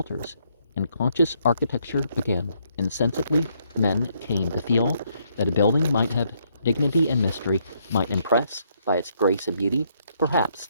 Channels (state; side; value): inverted; both; correlation -0.72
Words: and conscious architecture began. Insensibly, men came to feel that a building might have dignity and mystery, might impress by its grace and beauty. Perhaps